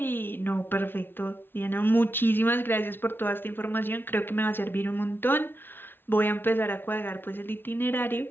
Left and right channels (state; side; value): late; right; 0.10 ms